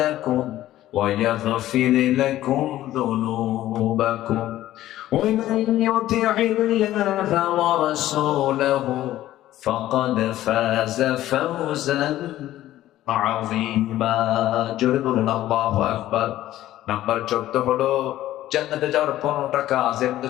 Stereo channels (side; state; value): right; quieter; 14.1 dB